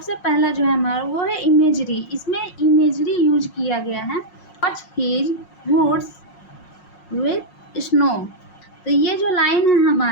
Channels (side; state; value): right; late; 5.5 ms